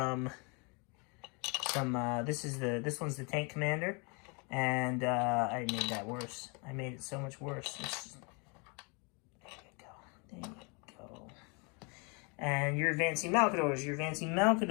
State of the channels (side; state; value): right; quieter; 32.7 dB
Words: this one's the tank commander. And I made that worse. I made it so much worse. There you go. There you go. And you're advancing Malcadors. You're advancing